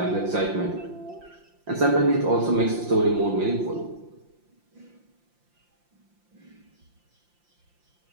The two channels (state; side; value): late; left; 5.8 ms